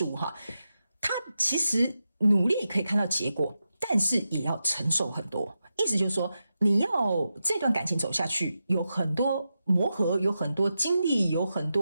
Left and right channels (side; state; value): both; inverted; correlation -0.89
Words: 物他其实努力可以看到结果，但是也要承受很多。意思就是说，你要这段感情走下去，有很多磨合，有很多经历，有很